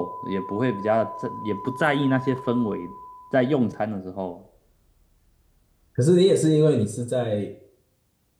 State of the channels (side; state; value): both; identical; correlation 1.00